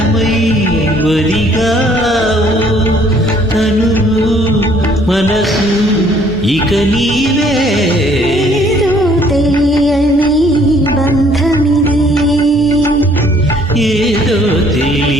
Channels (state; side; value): normal; both; correlation 0.61